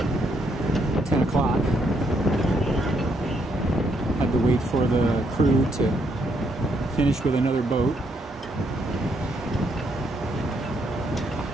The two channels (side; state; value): both; normal; correlation 0.74